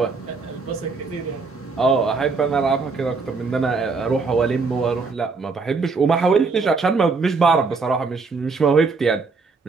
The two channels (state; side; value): quieter; left; 4.4 dB